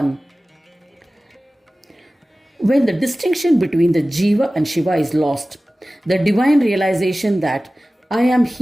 When the distinction between the Jiva and Shiva is lost, the divine realization that I am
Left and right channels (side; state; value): both; normal; correlation 0.97